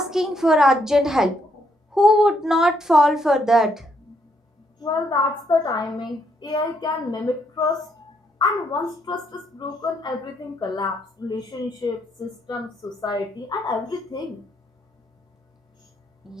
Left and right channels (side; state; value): both; normal; correlation 0.74